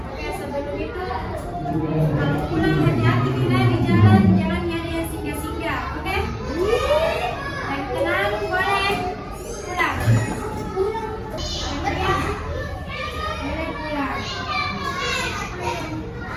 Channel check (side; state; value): both; identical; correlation 1.00